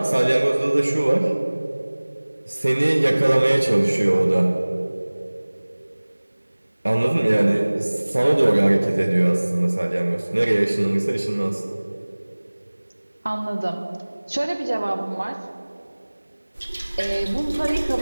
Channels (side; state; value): both; inverted; correlation -1.00